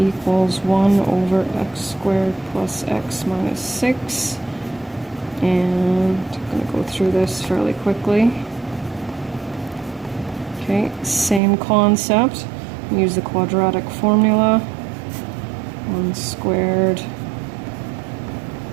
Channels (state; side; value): drops out; left; at 11.4 s